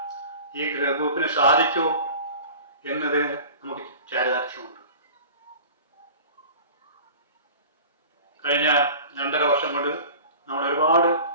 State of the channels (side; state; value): both; inverted; correlation -0.40